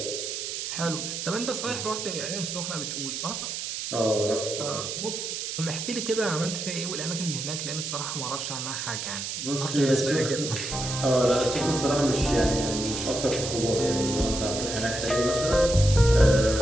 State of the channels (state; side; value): noise; right; hiss, 5 dB below the sound